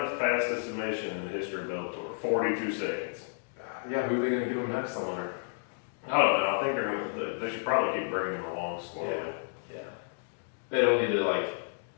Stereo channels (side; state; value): right; silent; digital silence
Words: fastest submission in the history of Bellator. 42 seconds. Yeah, who are they going to give him next? I wonder. I don't know. I think they should probably keep bringing him along slowly. Yeah. They don't need to like